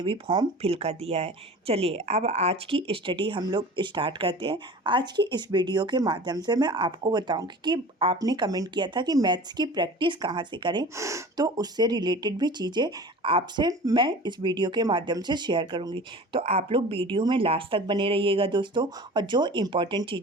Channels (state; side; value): normal; both; correlation 0.39